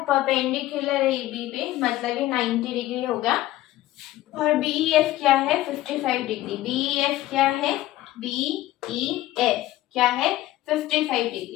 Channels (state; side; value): quieter; right; 15.5 dB